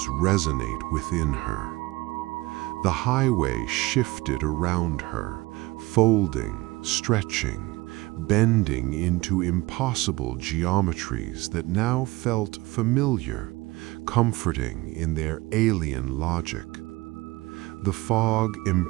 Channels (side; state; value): left; quieter; 21.1 dB